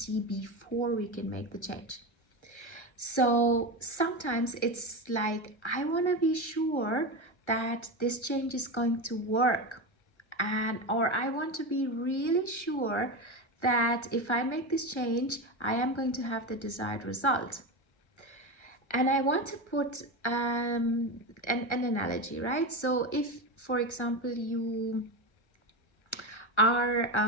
before we can make the change. So sometimes it's like, I want to be sure that this change is going to work, or I want to be really sure that if I make this change, I am going to have the desired result. And I want to put an analogy, right? So if, for example, you are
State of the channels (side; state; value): right; late; 1.3 ms